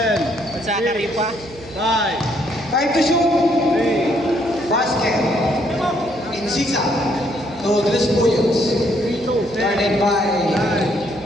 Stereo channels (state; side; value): noise; right; hum, 19 dB below the sound